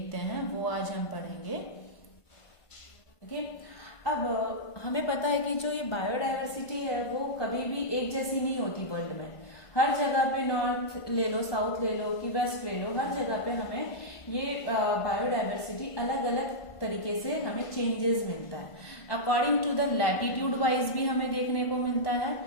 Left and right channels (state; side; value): late; right; 1.5 ms